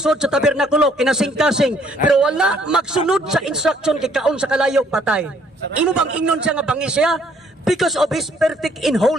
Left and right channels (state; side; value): normal; both; correlation 0.64